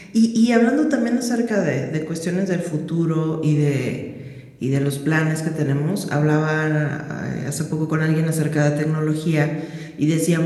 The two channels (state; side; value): identical; both; correlation 1.00